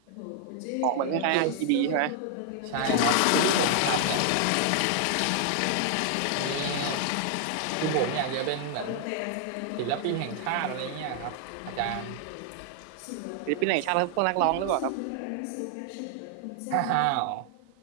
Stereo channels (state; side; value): different; both; correlation 0.00